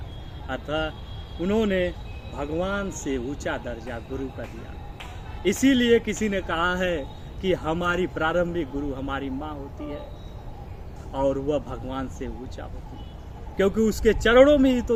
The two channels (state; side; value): identical; both; correlation 1.00